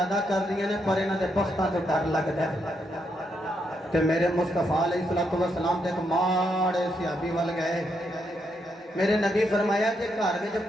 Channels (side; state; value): both; normal; correlation 0.79